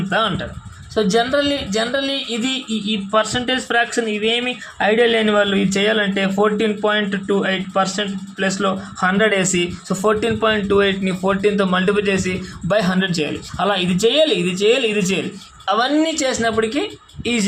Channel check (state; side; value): identical; both; correlation 1.00